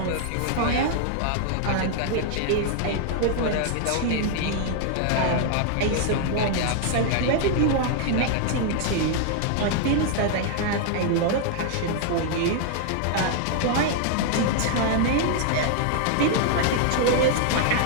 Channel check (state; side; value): different; both; correlation 0.00